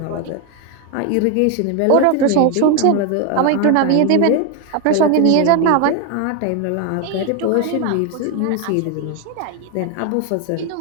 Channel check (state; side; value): different; both; correlation 0.01